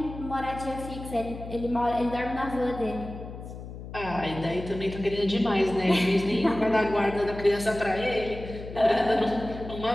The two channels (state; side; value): noise; left; hum, 11 dB below the sound